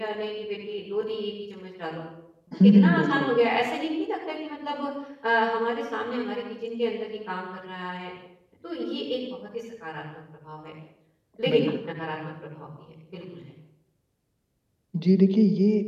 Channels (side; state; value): both; identical; correlation 1.00